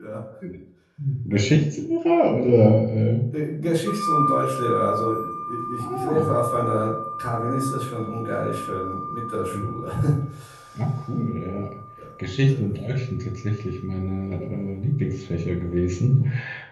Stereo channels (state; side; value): identical; both; correlation 1.00